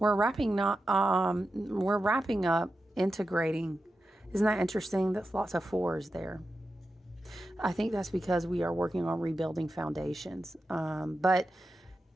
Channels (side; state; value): both; normal; correlation 0.91